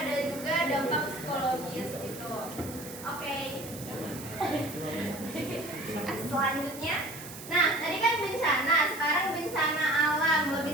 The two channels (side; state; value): right; noise; hiss, 13 dB below the sound